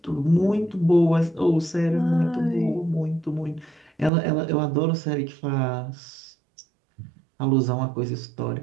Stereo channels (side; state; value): left; drops out; at 4.1 s